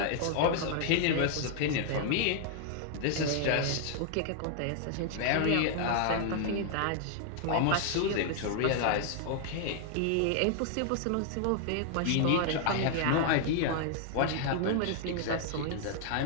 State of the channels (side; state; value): both; different; correlation 0.00